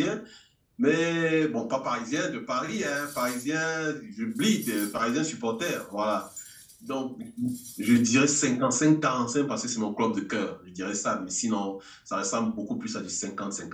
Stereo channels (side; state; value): both; identical; correlation 1.00